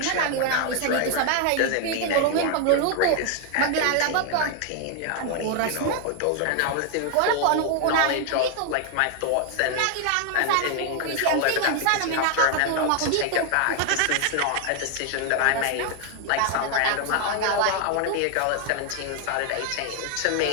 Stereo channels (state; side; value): different; both; correlation 0.00